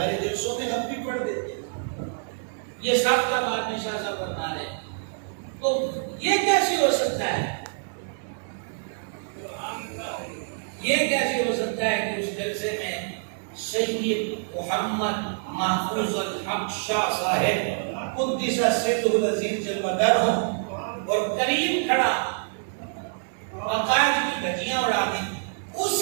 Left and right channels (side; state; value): left; silent; digital silence